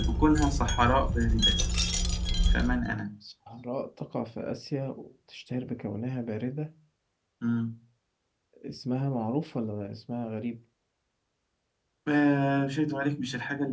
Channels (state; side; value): identical; both; correlation 1.00